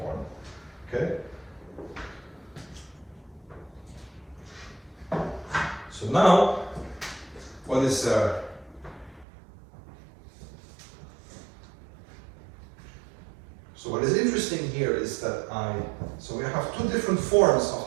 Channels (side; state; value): left; drops out; at 9.2 s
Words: Okay? So now, what is so what is interesting here is that so we have two different forms of